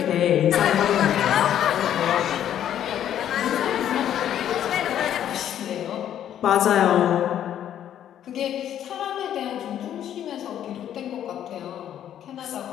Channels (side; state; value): right; quieter; 10.6 dB